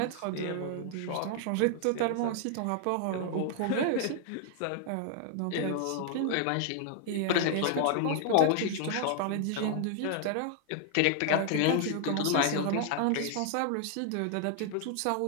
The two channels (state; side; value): different; both; correlation 0.00